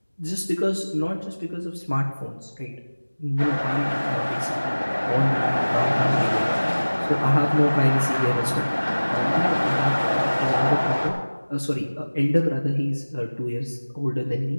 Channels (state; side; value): inverted; both; correlation -1.00